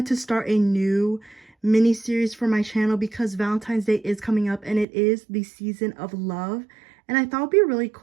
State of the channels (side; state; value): left; drops out; at 4.9 s